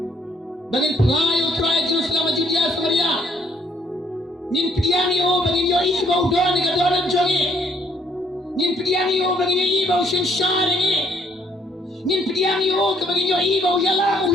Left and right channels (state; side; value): normal; both; correlation 0.66